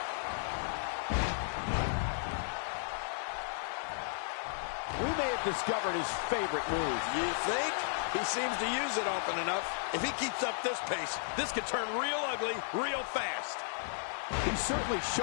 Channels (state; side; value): silent; right; 55 dB below the other